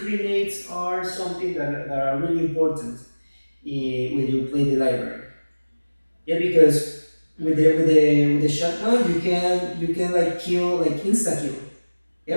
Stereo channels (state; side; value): inverted; both; correlation -1.00